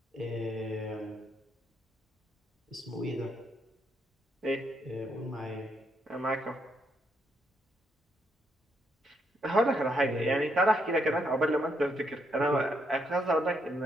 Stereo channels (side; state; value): both; normal; correlation 0.76